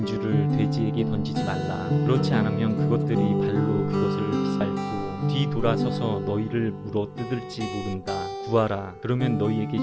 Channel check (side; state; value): both; identical; correlation 1.00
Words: 돼지에게 던지지 말라. 그렇지 않으면 그것들이 발로 그것을 비살고 뒤돌아서서 너희를 물어 뜯을지 모른다. 구하라. 그러면 너희에게